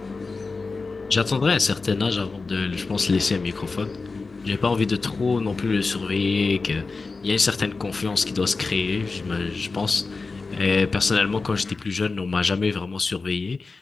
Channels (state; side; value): quieter; right; 4.0 dB